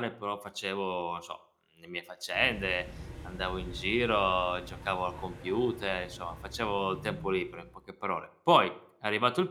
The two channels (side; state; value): both; identical; correlation 1.00